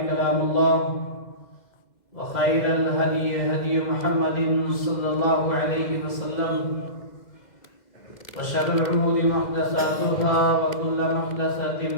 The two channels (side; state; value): right; late; 2.0 ms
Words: كلام الله وخير الهدي هدي محمد صلى الله عليه وسلم وشر الأمور محدثاتها وكل محدثة